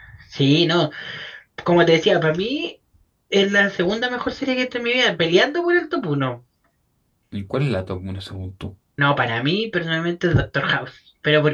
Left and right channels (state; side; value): identical; both; correlation 1.00